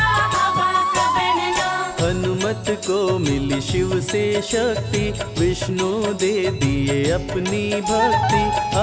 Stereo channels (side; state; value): both; identical; correlation 1.00